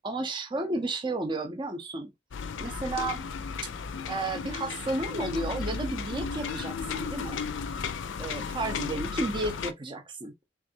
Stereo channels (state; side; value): normal; both; correlation 0.45